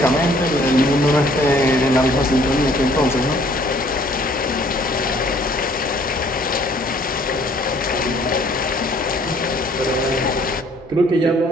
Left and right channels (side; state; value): both; normal; correlation 0.59